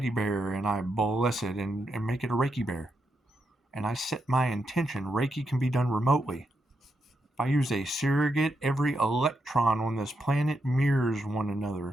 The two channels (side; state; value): both; normal; correlation 0.83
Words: bear and I bless it and make it a Reiki bear, and I set my intention, Reiki can be done remotely. If I use a surrogate, every electron on this planet mirrors one